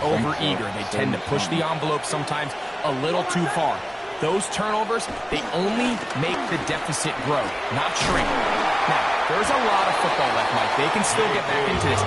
over-eager. They tend to push the envelope sometimes a little too far. Those turnovers, they only make the deficit grow, not shrink. Now, there's a lot of football left, Mike. They can still get back into this.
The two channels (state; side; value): identical; both; correlation 1.00